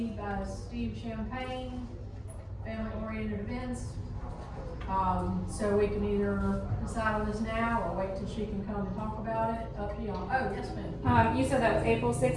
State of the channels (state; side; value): identical; both; correlation 1.00